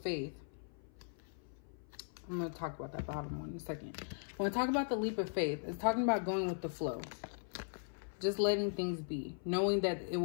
I'm going to talk about that bottom one in a second. When I talk about the leap of faith, it's talking about going with the flow. Just letting things be. Knowing that it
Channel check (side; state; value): right; silent; 52 dB below the other